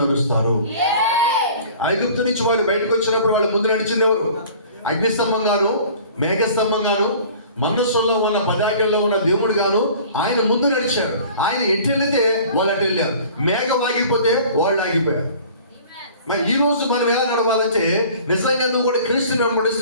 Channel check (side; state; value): both; inverted; correlation -0.47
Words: నడుస్తారు. ఐగుప్తు నుంచి వాళ్ళు బయటకు వచ్చినప్పుడు వాళ్ళు ముందు నడిచింది ఎవరు? అగ్నిస్తంభం గాను, మేఘస్తంభం గాను, మనస్సులో ఉన్న పదార్థంలో ఉన్న దేవుడు గాను ఆయన ముందు నడిచారు. ఆయన ఎటు వెళితే వాళ్ళు అటు వెళ్ళారు. మేఘం ఆగిపోతే వాళ్ళు ఆగిపోయారు. మరి ఈ రోజు మనం ఎలా నడవాలంటే నిజంగా నువ్వు కూడా క్రీస్తుని